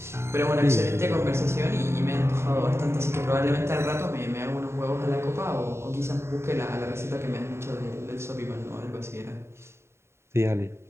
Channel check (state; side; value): late; left; 0.13 ms